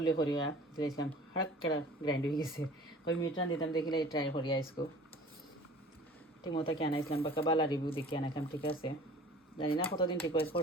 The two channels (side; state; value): both; normal; correlation 0.46